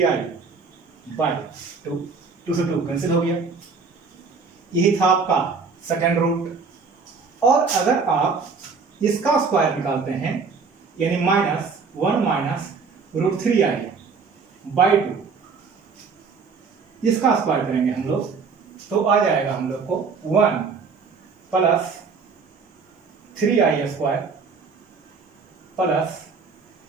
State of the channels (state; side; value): quieter; left; 5.0 dB